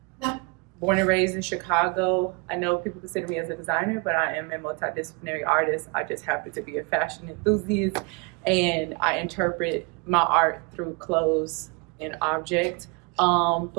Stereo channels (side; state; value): left; quieter; 31.2 dB